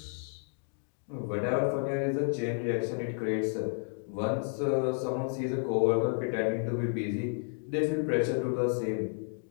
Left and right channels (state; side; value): silent; right; digital silence